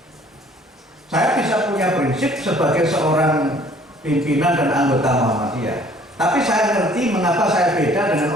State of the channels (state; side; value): normal; both; correlation 0.56